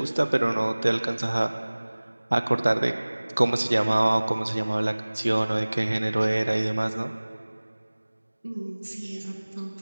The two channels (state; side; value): inverted; both; correlation -1.00